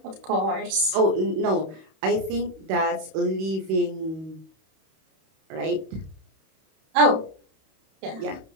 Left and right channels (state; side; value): late; left; 31 ms